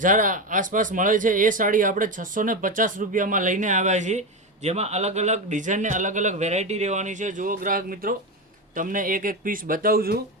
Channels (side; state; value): both; normal; correlation 0.16